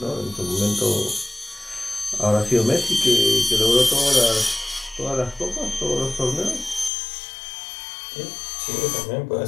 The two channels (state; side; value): drops out; right; at 6.9 s